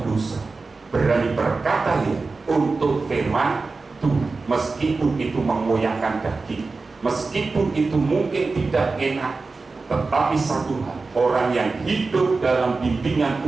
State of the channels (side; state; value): left; quieter; 3.9 dB